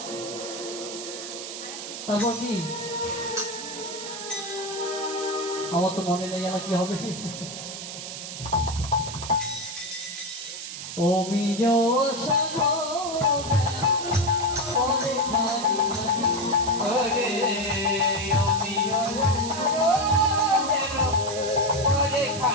তারপর কি? আমার তো মনে নেই, আর কি হবে? ও মিজো সাগো ওরে খালি খালি ওরে আমি ওরে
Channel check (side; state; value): right; noise; hiss, 8 dB below the sound